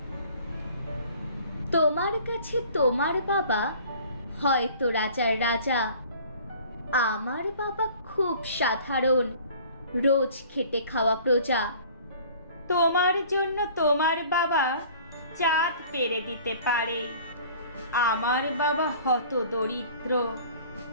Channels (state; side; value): inverted; both; correlation -0.49